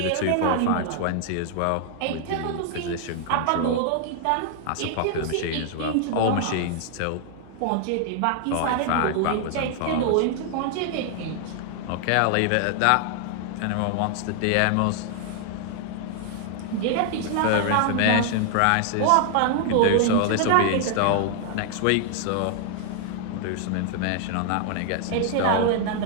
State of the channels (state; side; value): different; both; correlation 0.00